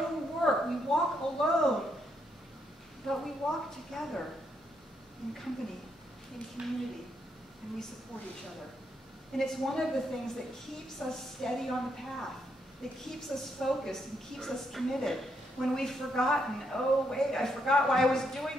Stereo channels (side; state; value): both; normal; correlation 0.77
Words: work. We walk alone, but we walk together in company, in community, and we support each other. And it's one of the things that keeps us steady on the path, that keeps us focused and keeps us committed. When we've forgotten, oh wait, I forgot why I was